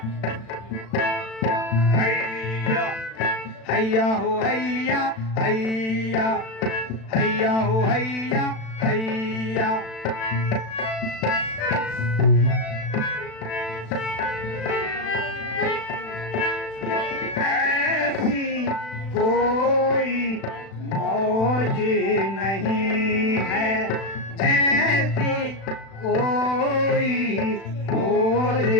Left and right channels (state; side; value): late; right; 36 ms